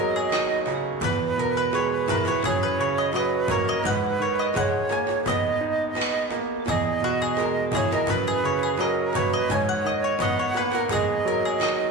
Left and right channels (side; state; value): both; normal; correlation 0.39